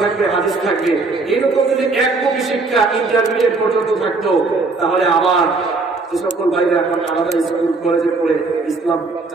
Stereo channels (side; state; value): left; quieter; 3.7 dB